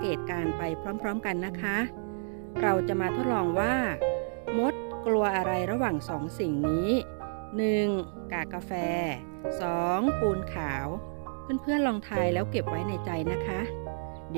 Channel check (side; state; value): left; silent; digital silence